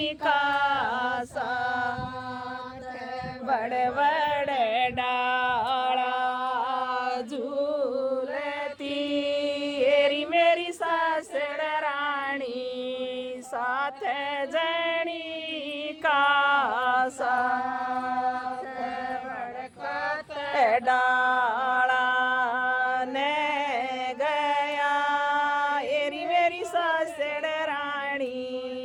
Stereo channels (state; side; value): identical; both; correlation 1.00